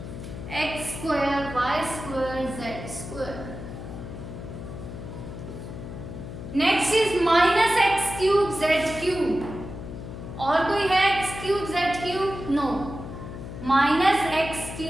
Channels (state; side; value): noise; left; hum, 10 dB below the sound